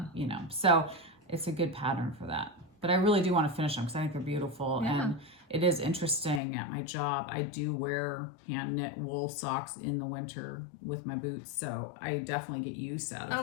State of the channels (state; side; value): drops out; right; at 6.4 s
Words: you know, so it's a good pattern for that. But I really do want to finish them because I think they're beautiful. And it is interesting at my job. I do wear hand knit wool socks in the winter with my boots. So I definitely get use out